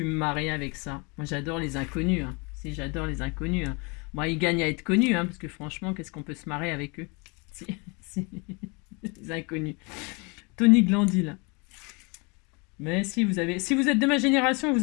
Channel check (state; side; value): quieter; right; 30.0 dB